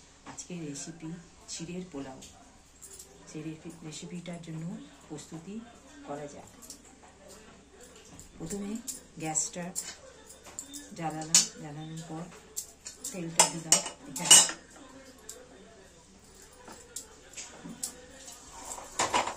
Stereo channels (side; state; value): both; identical; correlation 1.00